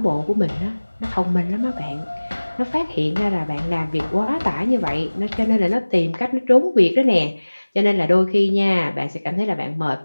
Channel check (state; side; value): inverted; both; correlation -1.00